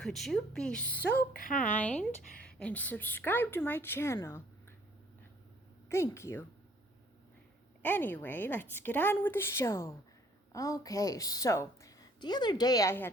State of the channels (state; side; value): normal; both; correlation 0.60